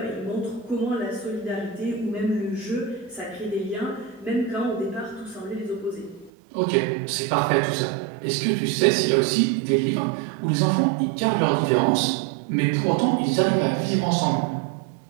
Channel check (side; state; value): left; drops out; at 6.3 s